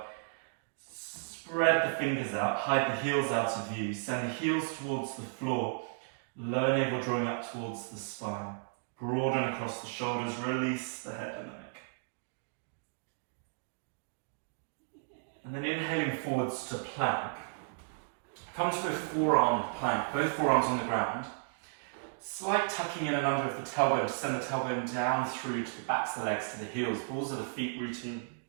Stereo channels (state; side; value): silent; left; digital silence